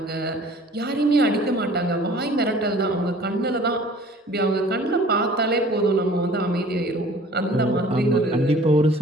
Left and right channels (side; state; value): both; normal; correlation 0.50